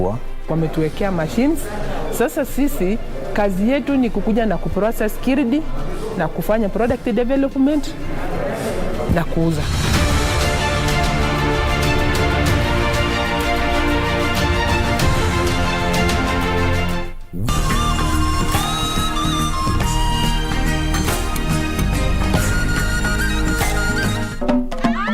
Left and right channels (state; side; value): identical; both; correlation 1.00